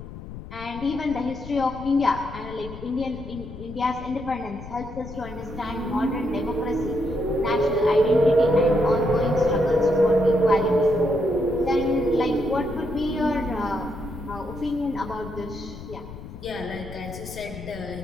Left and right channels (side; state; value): left; noise; rumble, 13 dB below the sound